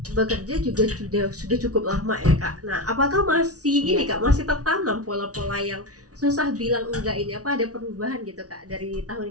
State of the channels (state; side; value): late; left; 0.67 ms